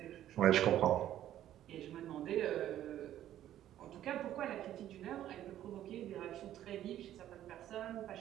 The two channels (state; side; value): quieter; left; 12.1 dB